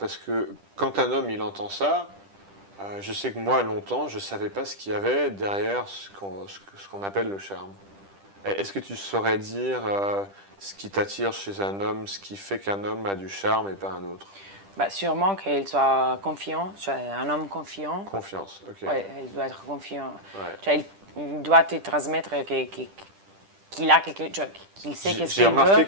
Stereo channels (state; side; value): late; left; 10 ms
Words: que quand un homme il entend ça, je sais que moi, longtemps, je ne savais pas ce qu'il y avait derrière ce qu'on appelle le charme. Est-ce que tu saurais dire ce qui t'attire chez un homme, ce qui fait qu'un homme a du charme et pas un autre? Bah, sûrement qu'il soit confiant, un homme confiant. Confiance, ok. Ouais, il doit être confiant. Ouais. Il doit te transmettre qu'il a quelque chose, qu'il sait qu'est-ce J'ai qu'il veut. remarqué